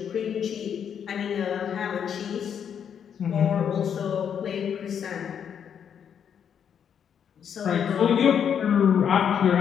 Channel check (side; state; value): right; quieter; 8.1 dB